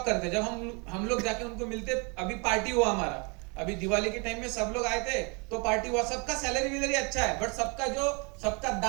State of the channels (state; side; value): quieter; left; 32.0 dB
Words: करते। जब हम लोग जाके उनको मिलते, अभी पार्टी हुआ हमारा, अभी दिवाली के टाइम में सब लोग आए थे तो पार्टी हुआ, सबका सैलरी वैलरी अच्छा है, बट सबका